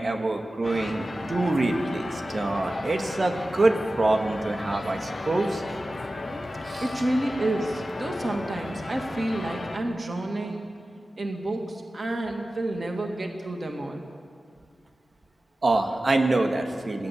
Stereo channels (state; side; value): normal; both; correlation 0.95